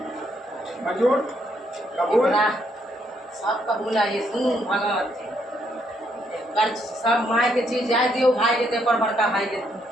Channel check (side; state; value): both; normal; correlation 0.73